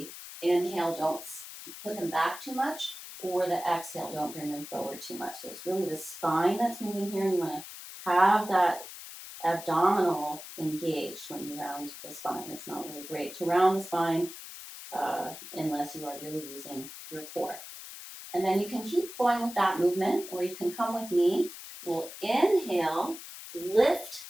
inhale, don't put them back too much, or the exhale, don't bring them forward too much. So it's really the spine that's moving here, and you want to have that abdominal engaged when you round the spine. It's not really great to round the spine unless you are really using your core. And then you can keep going with that movement, or you can come with me. We'll inhale, lift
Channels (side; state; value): left; noise; hiss, 13 dB below the sound